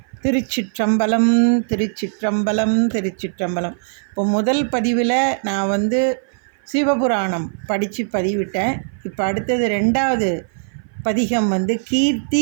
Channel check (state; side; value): silent; left; 57 dB below the other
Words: திருச்சிற்றம்பலம் திருச்சிற்றம்பலம் திருச்சிற்றம்பலம். இப்போ முதல் பதிவில் நான் சிவபுராணம் படித்து பதிவிட்டேன். இப்போ அடுத்தது 2வது பதிகம்